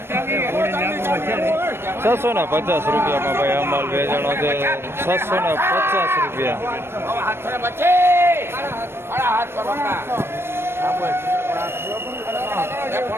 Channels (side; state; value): left; late; 0.12 ms